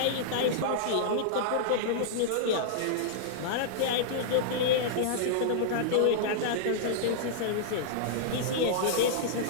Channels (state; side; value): different; both; correlation -0.02